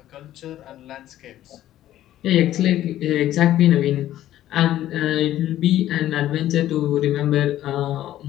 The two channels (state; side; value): quieter; right; 13.1 dB